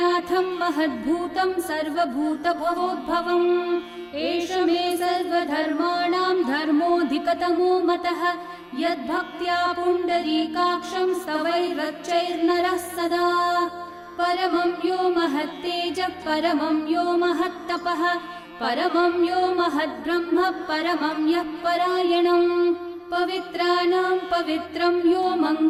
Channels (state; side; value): identical; both; correlation 1.00